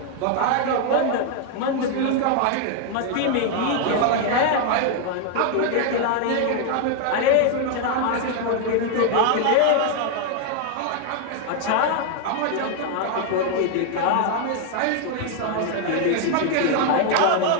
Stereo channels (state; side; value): different; both; correlation 0.00